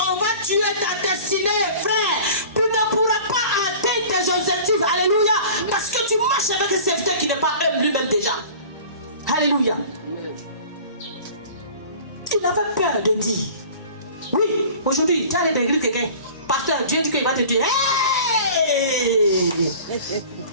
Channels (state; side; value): inverted; both; correlation -0.43